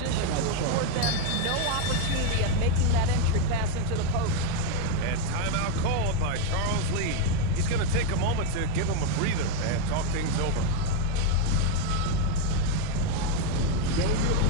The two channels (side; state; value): both; different; correlation 0.02